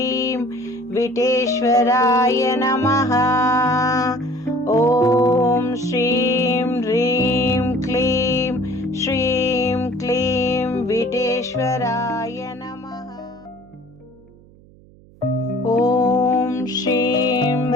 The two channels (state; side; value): noise; right; hum, 26 dB below the sound